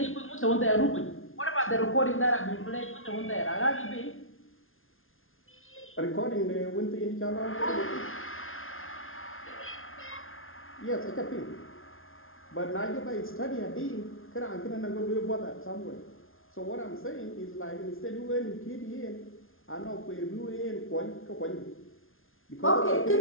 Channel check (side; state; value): right; late; 0.60 ms